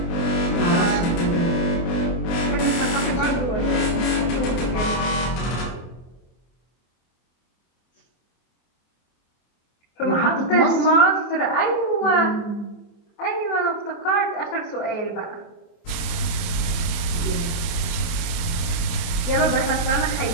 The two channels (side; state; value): right; late; 24 ms